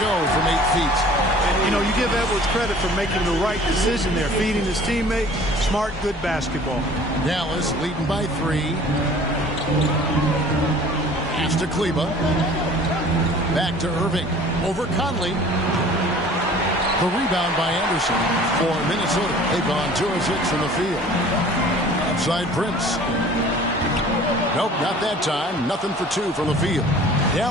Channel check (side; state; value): both; normal; correlation 0.48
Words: from 8 feet. And, you know, you give Edwards credit for making the right decision there. Feeding his teammate. Smart, good basketball. Dallas leading by 3. Pass to Kleba. Back to Irving. Over Conley. The rebound by Anderson for Minnesota. They've gone 2 of 6 from the field. Outside Prince. Nope, not that time. Nothing for 2 from the field.